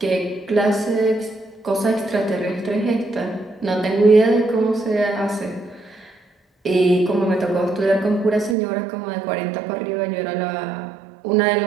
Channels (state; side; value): drops out; left; at 8.6 s